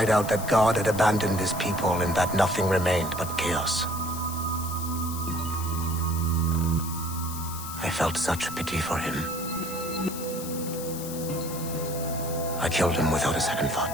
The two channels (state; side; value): noise; left; hiss, 10 dB below the sound